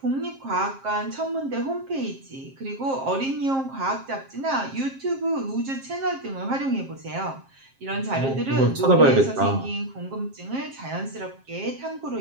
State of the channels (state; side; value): late; left; 7.5 ms